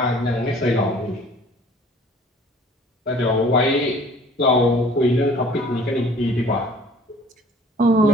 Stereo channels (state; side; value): normal; both; correlation 0.52